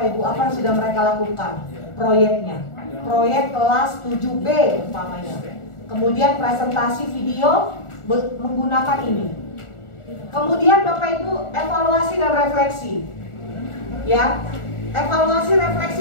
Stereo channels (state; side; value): late; right; 1.4 ms